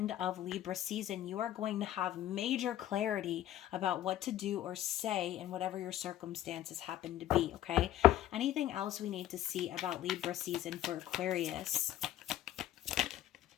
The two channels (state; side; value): quieter; right; 12.7 dB